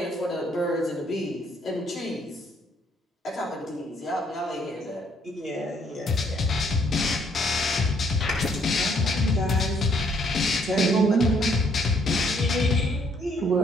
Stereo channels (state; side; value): normal; both; correlation 0.67